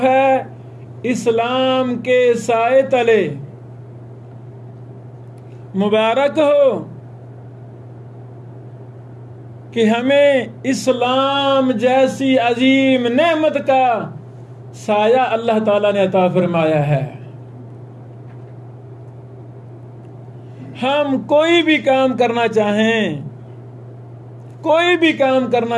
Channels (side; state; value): both; identical; correlation 1.00